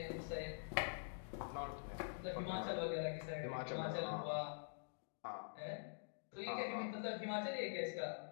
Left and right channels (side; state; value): right; silent; digital silence